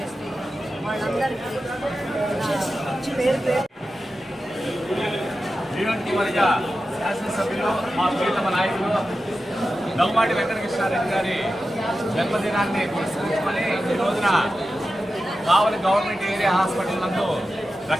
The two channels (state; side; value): normal; both; correlation 0.92